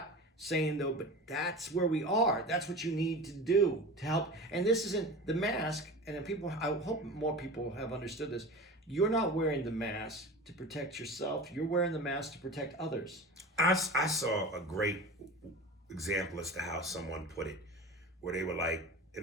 saying though, but that's where we are. That's what you need to do to help. And this isn't the mask. And then people, I hope more people have understood this. You're not wearing the mask to protect yourself. You're wearing the mask to protect others. I saw a great example as to how someone put it, where they were like,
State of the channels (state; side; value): normal; both; correlation 0.33